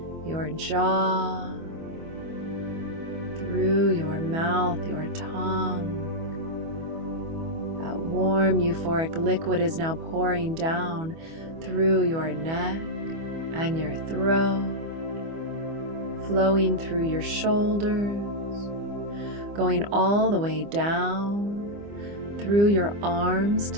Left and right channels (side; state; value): left; late; 25 ms